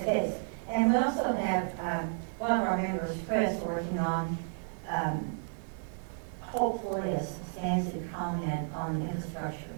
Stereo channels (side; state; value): left; silent; 56 dB below the other